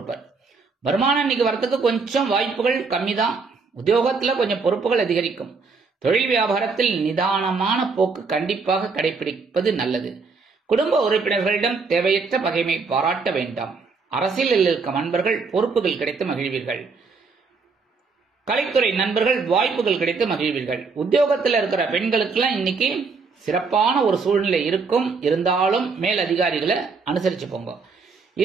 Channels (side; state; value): left; quieter; 4.7 dB